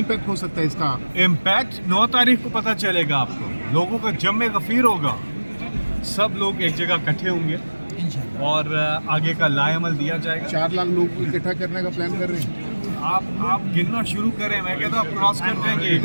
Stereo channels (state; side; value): inverted; both; correlation -1.00